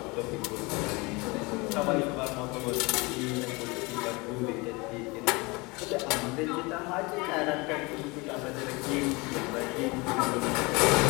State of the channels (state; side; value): quieter; right; 25.8 dB